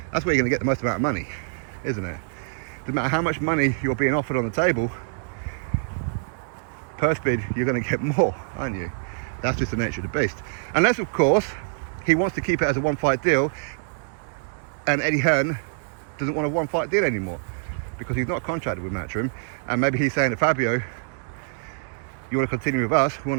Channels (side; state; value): left; silent; digital silence